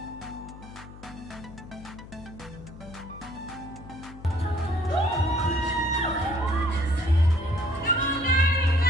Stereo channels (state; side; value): noise; left; hum, 16 dB below the sound